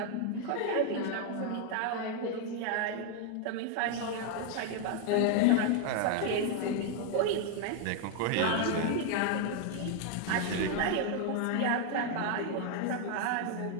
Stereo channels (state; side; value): different; both; correlation 0.00